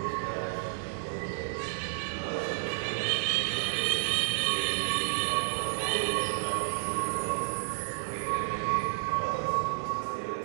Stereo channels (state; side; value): silent; left; digital silence